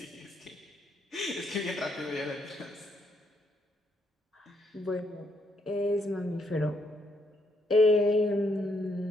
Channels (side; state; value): both; normal; correlation 0.74